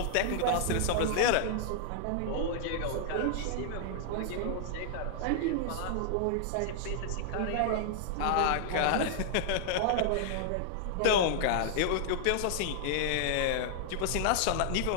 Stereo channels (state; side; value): different; both; correlation -0.01